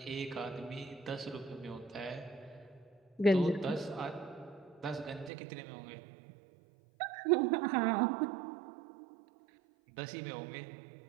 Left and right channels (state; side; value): drops out; left; at 5.3 s